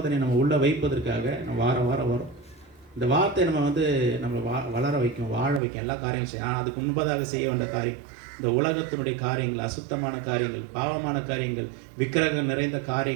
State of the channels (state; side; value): drops out; left; at 5.6 s